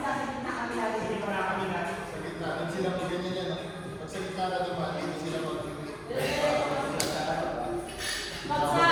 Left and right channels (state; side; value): identical; both; correlation 1.00